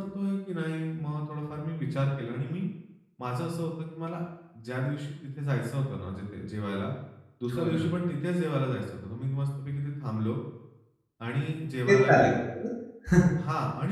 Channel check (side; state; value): both; identical; correlation 1.00